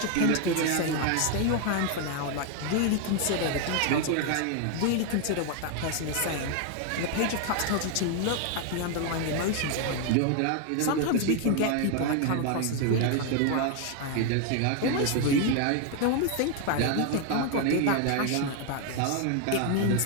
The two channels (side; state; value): both; different; correlation 0.01